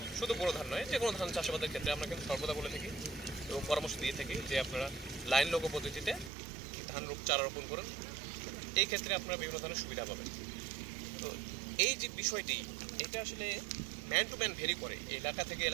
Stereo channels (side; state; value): left; drops out; at 6.3 s